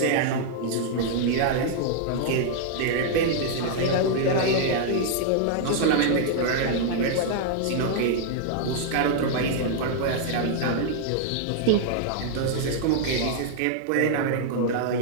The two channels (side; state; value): both; different; correlation -0.01